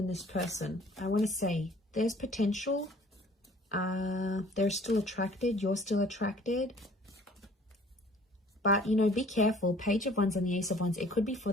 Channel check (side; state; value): both; normal; correlation 0.53